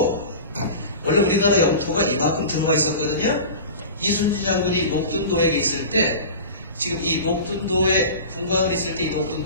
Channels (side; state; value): both; inverted; correlation -0.34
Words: 원래 우리나라 영토가 이만큼 들어와 있었거든요. 이순신 장군이 녹둔도에 있을 때 지금 이 녹둔도에 분광을 있을 때 이